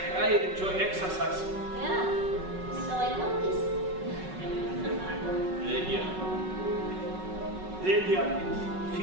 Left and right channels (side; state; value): left; late; 5.4 ms